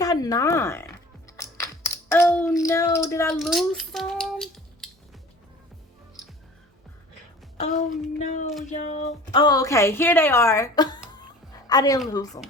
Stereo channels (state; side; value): normal; both; correlation 0.44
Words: 9. Oh no, did I lose some? Oh no, y'all. Oh, okay, here they are. I didn't lose them.